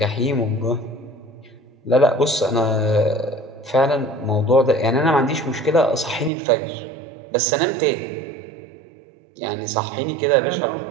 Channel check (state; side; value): drops out; left; at 6.3 s